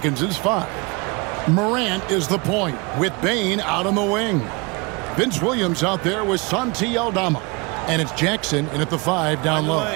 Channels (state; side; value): quieter; left; 28.0 dB